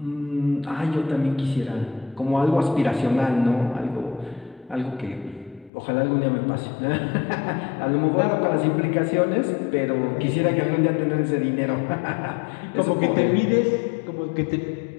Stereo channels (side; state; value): right; drops out; at 5.7 s